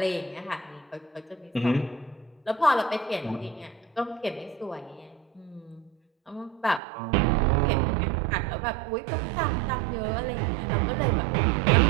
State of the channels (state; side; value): drops out; left; at 6.8 s